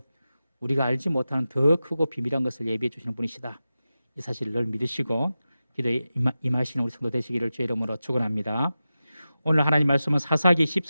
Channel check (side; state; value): both; inverted; correlation -0.93